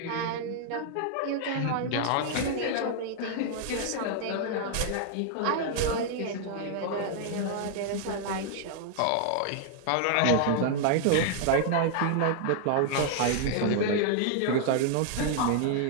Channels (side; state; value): both; different; correlation 0.00